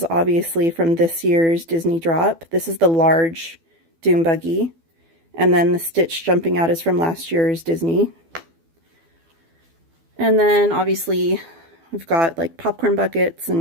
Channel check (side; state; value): left; late; 12 ms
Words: obviously from this year's Disney drop. This is the large Doom Buggy. And then the Stitch jumping out is from last year's Disney. And then obviously we've got like popcorn buckets